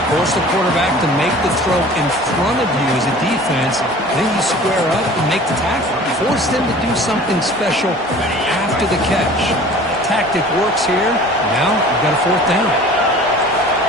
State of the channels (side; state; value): both; normal; correlation 0.45